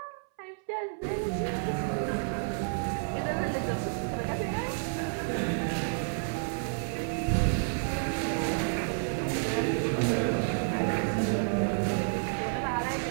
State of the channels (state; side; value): silent; left; 58 dB below the other